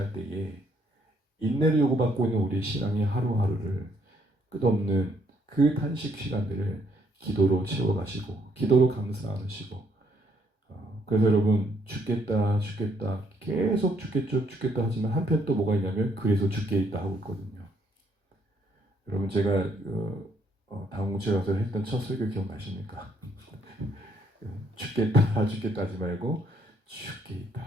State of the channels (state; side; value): normal; both; correlation 0.69